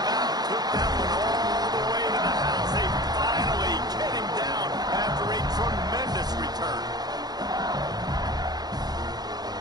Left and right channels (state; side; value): late; left; 0.19 ms